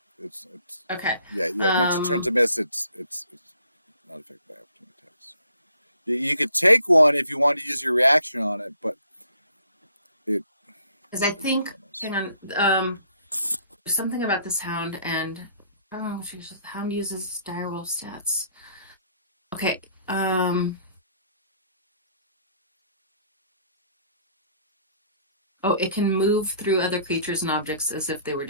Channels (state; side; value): inverted; both; correlation -0.62